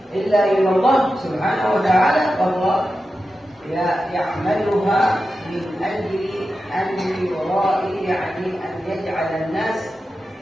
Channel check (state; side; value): normal; both; correlation 0.91